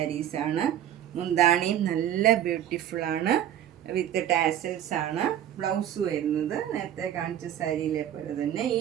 മുന്താണിയും നല്ല ബ്യൂട്ടിഫുള്ളാണ്. വിത്ത് ടാസൽസ് ആണ്. ബ്ലൗസ് വരുന്നത് നേരത്തെ കാണിച്ച സാരിയിലെ പോലെ തന്നെ ഈ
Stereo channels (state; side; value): quieter; left; 11.0 dB